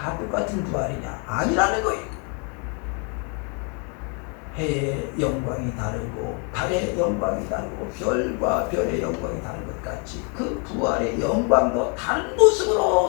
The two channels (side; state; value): right; quieter; 36.8 dB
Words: 똑같은 부활이냐? 아니라는 거예요. 해의 영광이 다르고 달의 영광이 다르고 별과 별의 영광이 다른 것 같이 그 부활의 영광도 다른